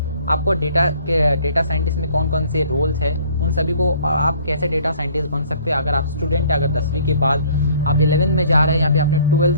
आपको डेटा साइंटिस्ट में कौन कौन से रोल्स हैं, उन सभी को, और आप कैसे डेटा साइंटिस्ट बन सकते हैं। अगर आप स्टूडेंट हैं, अगर 10वीं के बाद आप 11th में जा रहे हैं या फिर आपने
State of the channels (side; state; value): both; inverted; correlation -0.56